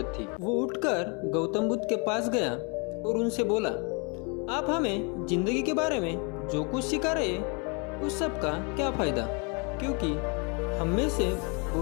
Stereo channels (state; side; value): quieter; right; 33.6 dB